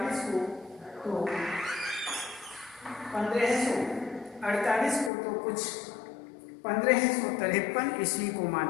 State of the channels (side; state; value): right; drops out; at 5.1 s